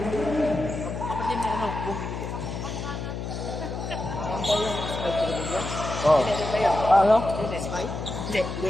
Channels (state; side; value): noise; left; hum, 5 dB below the sound